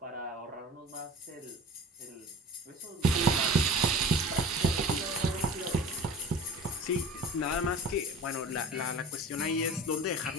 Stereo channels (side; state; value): both; normal; correlation 0.39